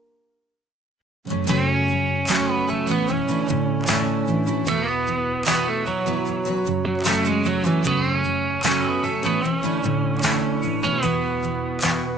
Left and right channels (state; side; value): normal; both; correlation 0.67